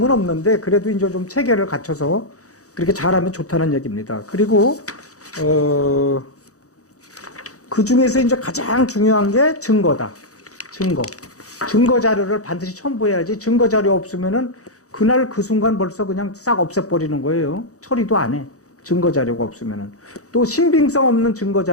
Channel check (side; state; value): right; late; 0.66 ms